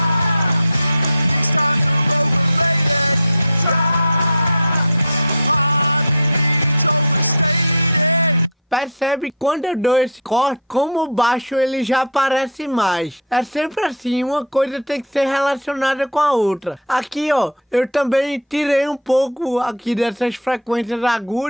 Percebe quando eu dou esse corte, como o baixo ele já aparece mais. É sempre assim, uma coisa tem que ser relacionada com a outra. Aqui, ó, eu também tirei um pouco aqui dessas frequências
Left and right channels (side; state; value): both; normal; correlation -0.07